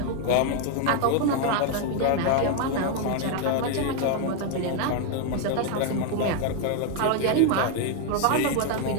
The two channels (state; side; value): different; both; correlation 0.01